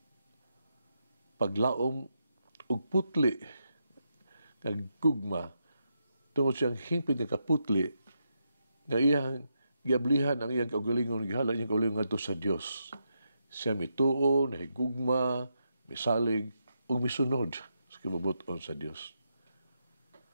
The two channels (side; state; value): both; inverted; correlation -0.83